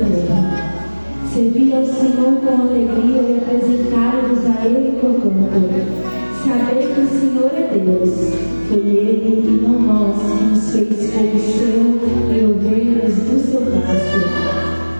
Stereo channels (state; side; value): inverted; both; correlation -1.00